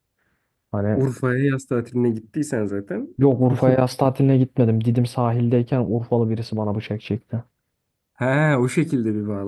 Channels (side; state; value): both; identical; correlation 1.00